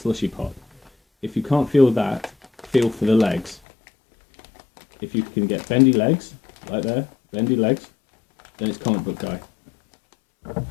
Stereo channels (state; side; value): drops out; right; at 3.6 s